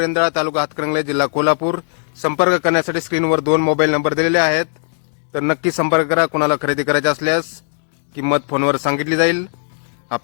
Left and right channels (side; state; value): right; silent; digital silence